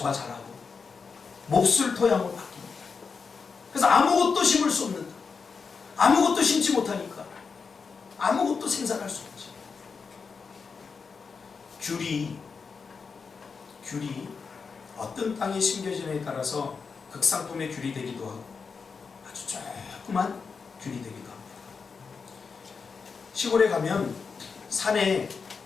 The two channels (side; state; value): right; quieter; 5.3 dB